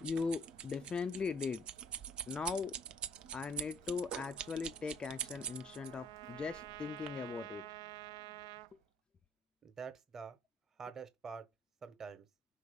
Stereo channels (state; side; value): normal; both; correlation 0.60